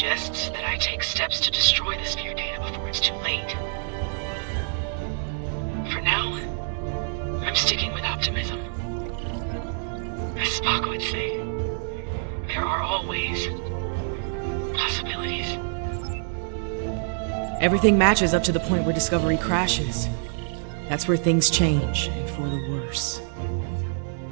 that I take steps to destroy the sphere data before it's too late. For now, I'm sticking with optimism. As Spock would say, there are always possibilities. Everything matches up to the point where Discovery crashes. That's where things change, and for the worse.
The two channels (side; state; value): left; silent; 61 dB below the other